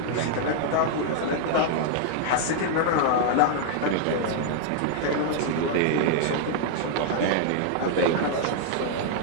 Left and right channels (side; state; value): both; different; correlation -0.01